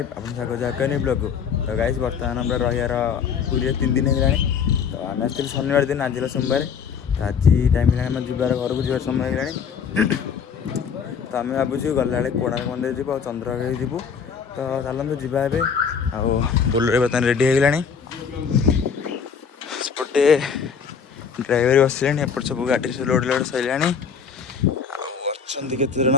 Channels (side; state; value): right; quieter; 6.6 dB